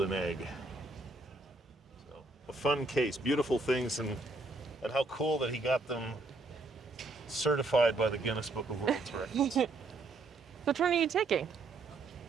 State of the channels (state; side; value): quieter; left; 3.2 dB